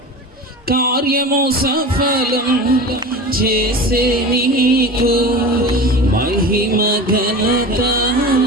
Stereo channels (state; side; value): normal; both; correlation 0.32